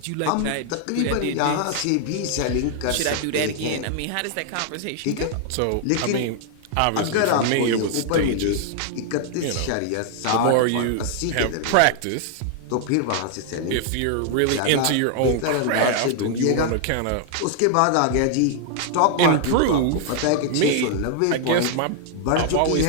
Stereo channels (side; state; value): both; different; correlation 0.00